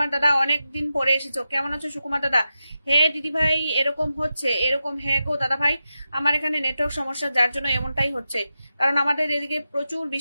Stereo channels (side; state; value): both; inverted; correlation -0.90